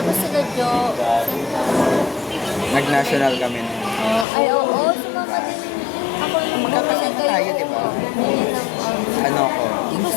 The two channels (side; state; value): right; drops out; at 4.2 s